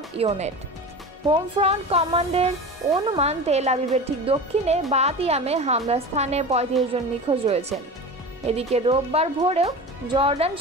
ইওনেট। হোম ফ্রন্ট কমান্ডের অনুমান, তেল আবিবের ঠিক দক্ষিণে বাতিয়ামে হামলার স্থানে 35 জন নিখোঁজ রয়েছেন। এদিকে রোববার ভোরেও জর্ডান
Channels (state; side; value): normal; both; correlation 0.31